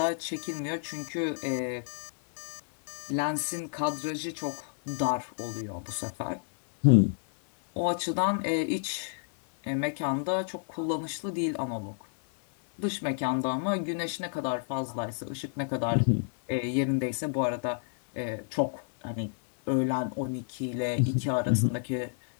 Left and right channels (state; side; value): silent; right; 58 dB below the other